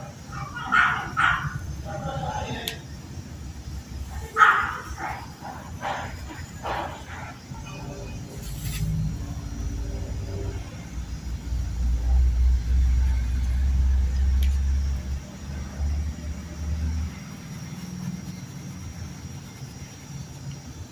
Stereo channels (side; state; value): both; identical; correlation 1.00